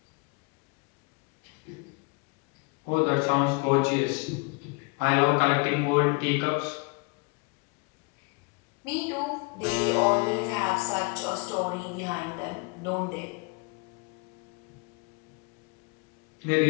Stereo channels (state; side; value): quieter; right; 29.5 dB